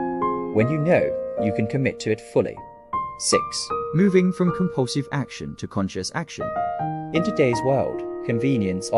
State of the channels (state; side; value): identical; both; correlation 1.00